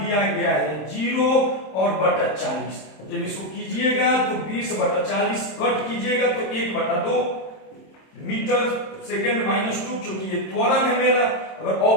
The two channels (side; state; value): right; late; 27 ms